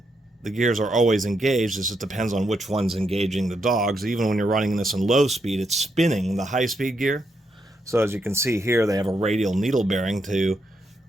the gears are always engaged, it just depends on which one's engaging the dogs. Even when you're running this in low speed, it's spinning the high speed gear. So as you can see here, they have a radial needle bearing to,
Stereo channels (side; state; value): both; normal; correlation 0.80